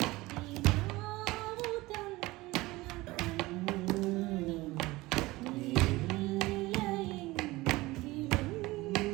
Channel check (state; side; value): quieter; left; 20.1 dB